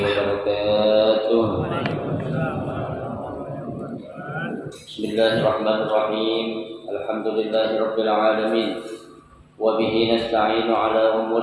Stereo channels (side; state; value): both; identical; correlation 1.00